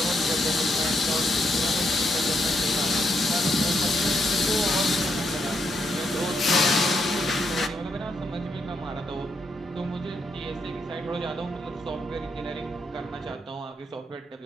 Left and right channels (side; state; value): both; normal; correlation 0.78